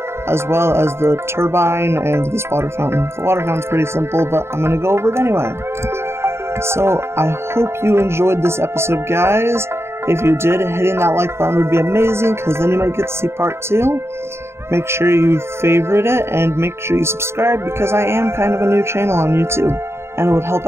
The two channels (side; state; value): left; late; 0.12 ms